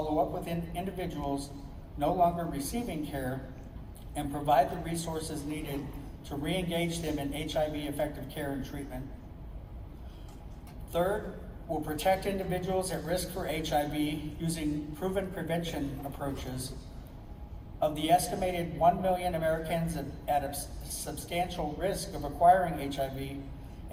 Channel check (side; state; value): both; identical; correlation 1.00